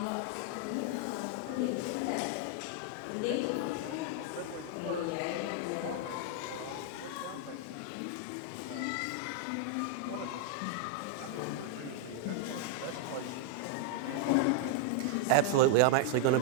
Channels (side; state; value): both; different; correlation 0.00